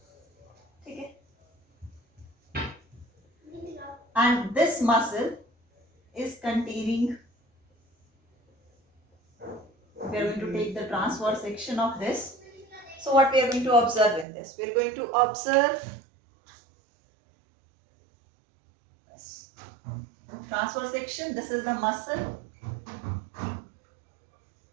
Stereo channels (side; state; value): left; drops out; at 14.2 s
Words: ठीक है? And this muscle is containing, we are going to take the transverse section of this. So what we are going to observe in this? We are going to observe this transverse section. This is the muscle.